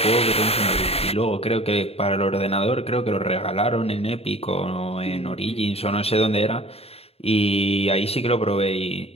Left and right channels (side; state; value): right; late; 0.29 ms